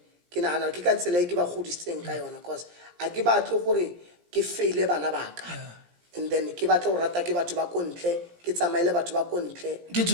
ke nagana ke ka tsela e ke ba godisitseng ka yona cause a ke batle gore ke faile bana baka and then ke batla go rata ke batho ba kontle ke tsamaile batho ba kontle Ke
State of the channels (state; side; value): late; left; 17 ms